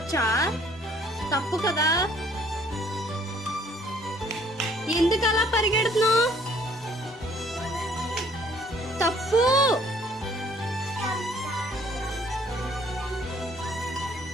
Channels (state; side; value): normal; both; correlation 0.60